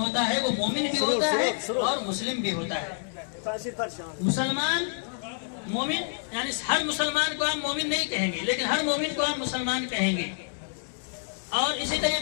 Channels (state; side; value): silent; right; digital silence